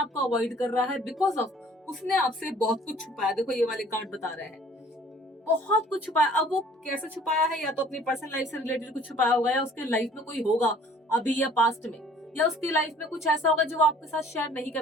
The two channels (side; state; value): both; normal; correlation 0.53